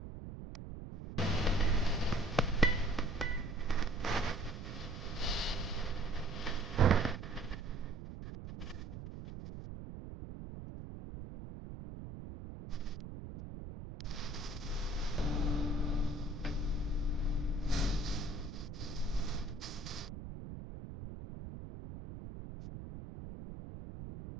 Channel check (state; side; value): noise; right; rumble, 9 dB below the sound